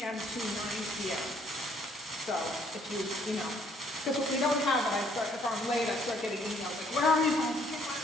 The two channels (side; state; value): both; normal; correlation 0.64